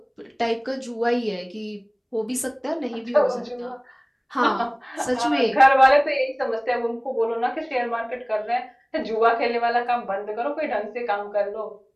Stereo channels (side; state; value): both; identical; correlation 1.00